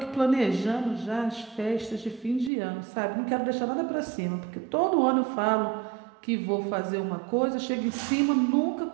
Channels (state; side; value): drops out; left; at 2.5 s